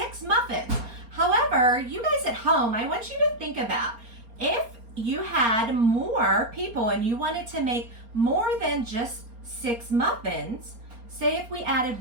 muffins. However, you guys at home, I want you to think about if you had more people and you wanted to make more than just 6 muffins, say if we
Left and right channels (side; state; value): left; late; 4.3 ms